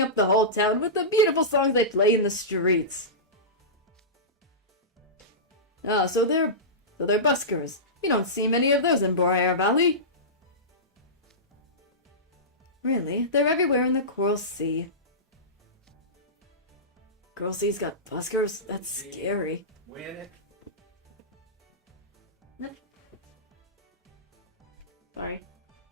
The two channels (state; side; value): normal; both; correlation -0.18